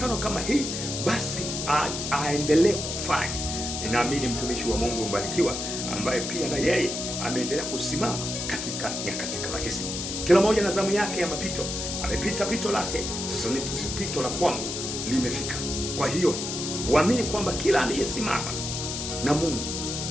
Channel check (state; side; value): noise; left; hiss, 4 dB below the sound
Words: kama hii, basi aendelee kufanya. Ninaamini mtumishi wa Mungu mbarikiwa ambaye pia na yeye ameendelea kusimama katika nyakati kama hizi. Kila mmoja na zamu yake ya mapito. Amepita pito lake, sasa ni pito la kwangu limefika. Kwa hiyo uamini kwamba kila aliyesimama na Mungu